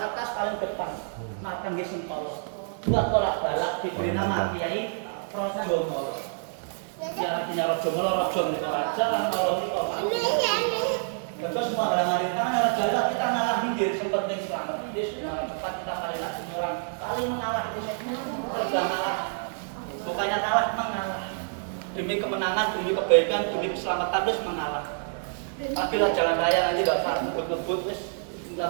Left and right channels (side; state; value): left; silent; digital silence